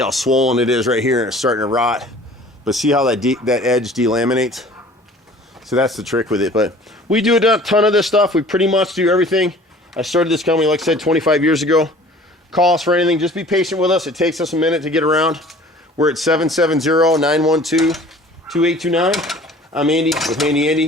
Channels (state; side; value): normal; both; correlation 0.48